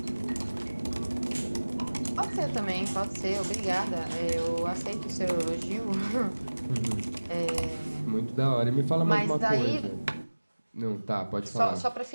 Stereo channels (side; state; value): both; inverted; correlation -1.00